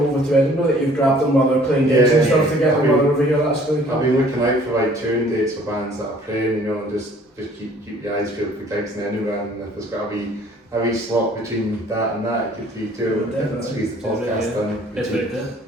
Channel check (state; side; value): normal; both; correlation 0.56